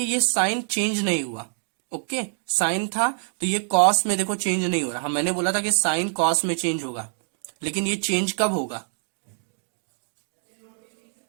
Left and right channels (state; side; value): silent; left; digital silence